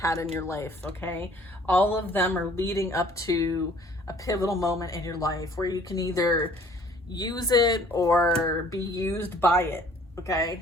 in your life, okay? All of them are leading up to a pivotal moment in your life where you can either use it or be used by it,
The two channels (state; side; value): normal; both; correlation 0.55